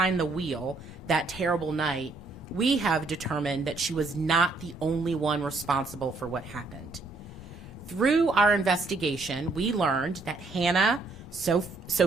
the wheel that terrible night, we have determined that she was not the only one responsible for what happened. Through our investigation, we learned that Hannah,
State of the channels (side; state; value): left; quieter; 3.6 dB